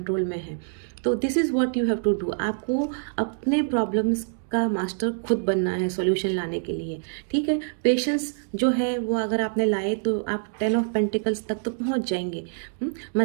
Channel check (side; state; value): left; silent; digital silence